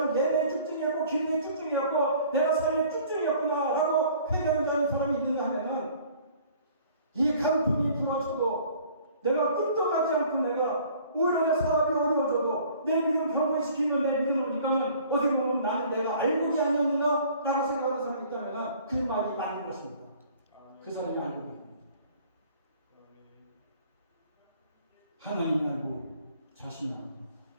예배의 집중이었고 기도의 집중이었고 내가 삶의 집중이었구나 라고 회개하는 사람이 있는가 하면은 이 강풍이 불어쳐도 내가 끄떡하지 않고 내가 오히려 내 사업이 어려워져도 내 믿음 경고시키면 내 믿음을 보니까는 어떻게 보면 나는 내가 알곡이 아니었는가? 라고 생각하는 사람이 있다면 그 말이 맞는 것입니다. 그 사람이 알곡입니다. 하나님 알고 자신이 알고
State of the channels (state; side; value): inverted; both; correlation -0.53